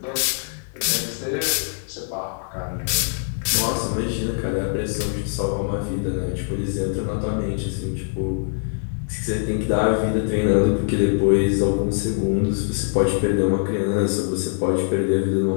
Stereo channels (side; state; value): right; silent; digital silence